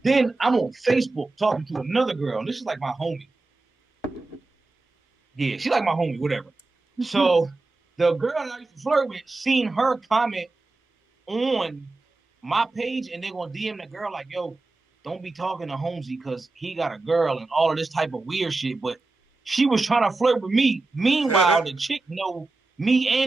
then I'm on Facebook talking to another girl. And this is like my homie. Yeah, she like my homie, whatever. So the girl that I used to flirt with seen her comment on my page, and they're gonna DM the girl like, "Yo, don't be talking to Holmzie because he got a girl and all of this type of weird shit." But she was trying to flirt with me. Meanwhile, the chick know me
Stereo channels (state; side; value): quieter; left; 3.3 dB